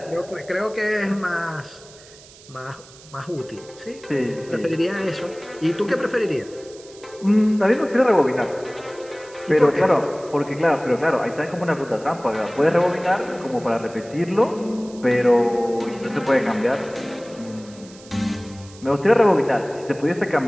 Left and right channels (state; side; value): noise; right; hiss, 22 dB below the sound